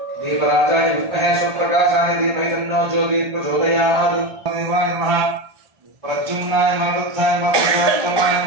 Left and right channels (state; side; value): late; left; 1.2 ms